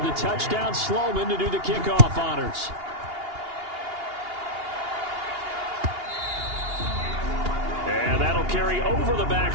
the touchdown, Sloman to do the kickoff honors. And that'll carry over the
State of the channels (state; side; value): late; left; 2.8 ms